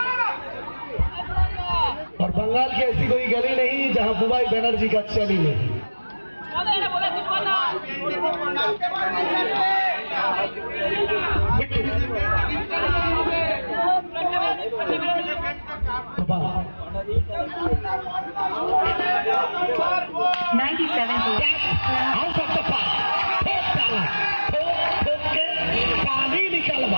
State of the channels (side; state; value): both; inverted; correlation -1.00